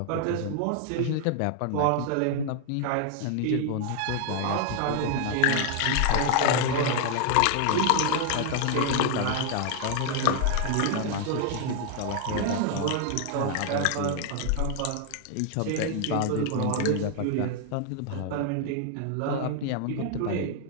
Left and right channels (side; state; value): both; different; correlation 0.00